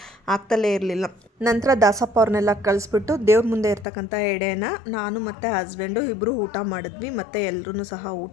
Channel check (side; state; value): right; drops out; at 3.9 s